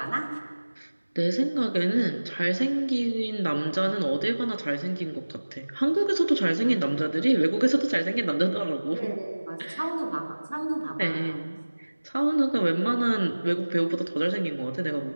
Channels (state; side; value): inverted; both; correlation -1.00